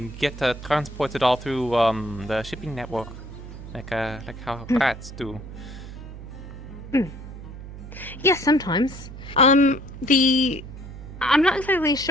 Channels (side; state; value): right; noise; hum, 12 dB below the sound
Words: get transported all through the shipping network, like how rats do. Yes, sometimes. I'm not exactly